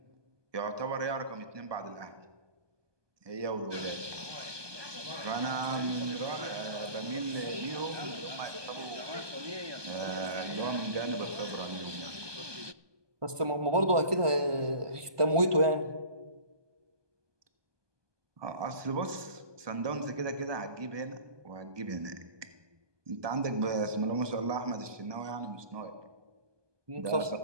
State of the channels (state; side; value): late; left; 1.2 ms